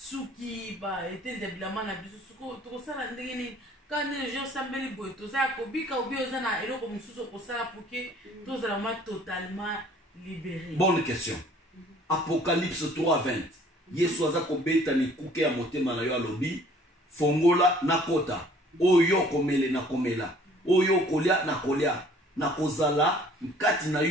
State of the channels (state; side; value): normal; both; correlation 0.55